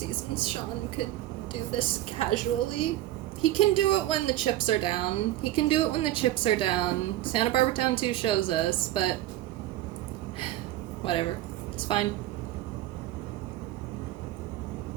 Sean could do this casually. He can do it when the chips are down. Santa Barbara Town 2 shows us, but whatever. It's fine.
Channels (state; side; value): quieter; left; 14.6 dB